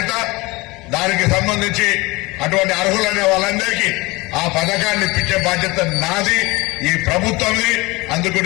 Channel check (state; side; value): quieter; right; 23.2 dB